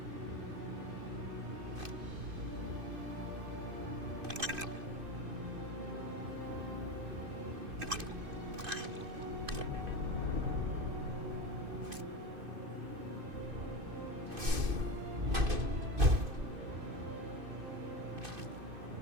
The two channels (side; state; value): left; late; 2.5 ms